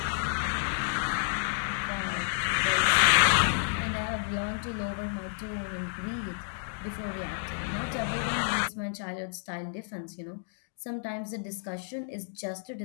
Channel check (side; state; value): right; silent; digital silence